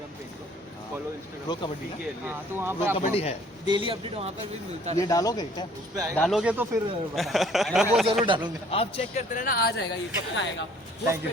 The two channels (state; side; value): normal; both; correlation 0.56